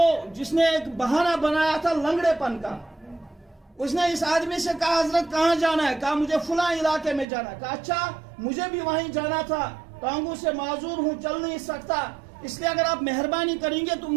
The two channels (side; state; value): left; drops out; at 7.2 s